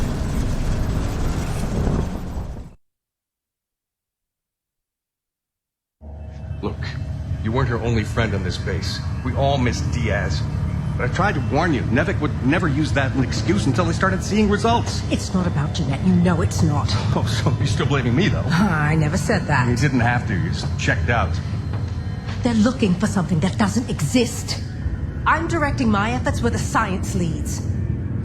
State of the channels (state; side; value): identical; both; correlation 1.00